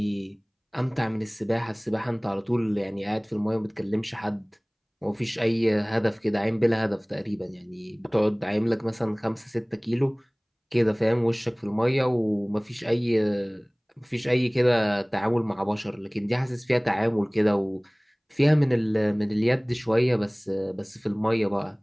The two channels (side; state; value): both; identical; correlation 1.00